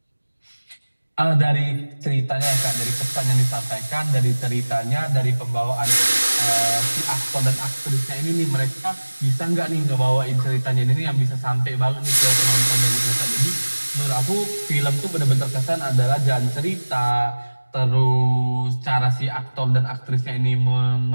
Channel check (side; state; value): both; inverted; correlation -1.00